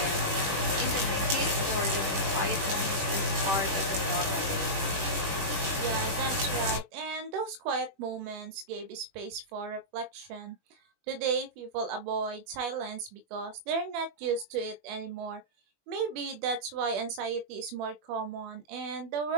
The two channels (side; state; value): left; late; 21 ms